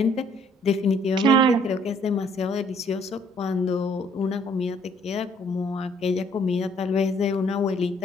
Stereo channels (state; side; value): normal; both; correlation 0.63